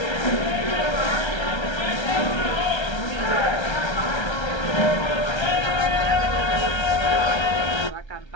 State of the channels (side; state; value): right; late; 1.3 ms